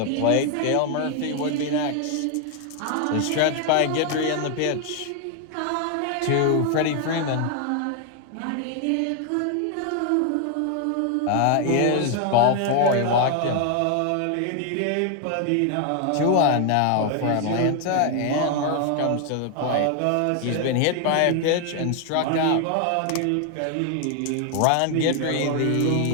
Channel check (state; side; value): different; both; correlation 0.00